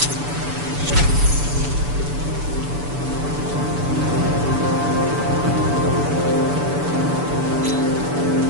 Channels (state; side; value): late; left; 6.9 ms